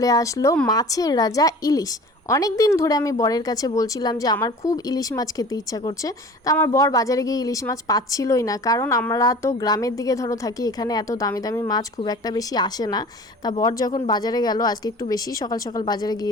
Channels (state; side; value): normal; both; correlation 0.42